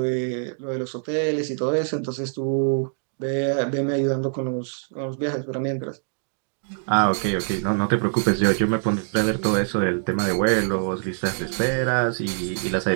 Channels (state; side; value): silent; left; 63 dB below the other